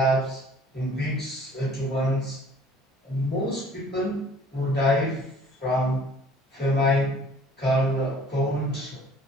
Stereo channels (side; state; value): both; normal; correlation 0.53